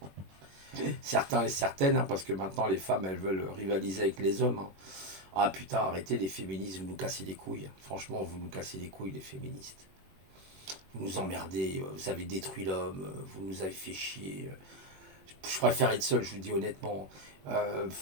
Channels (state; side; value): late; left; 21 ms